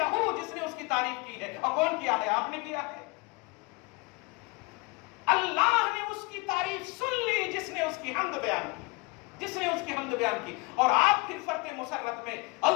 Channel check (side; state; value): right; quieter; 27.6 dB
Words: جس نے اس کی تعریف کی ہے. اور کون کیا ہے؟ آپ نے کیا ہے. اللہ نے اس کی تعریف سن لی جس نے اس کی حمد بیان کی، جس نے اس کی حمد بیان کی. اور آپ پھر فرق مسرت میں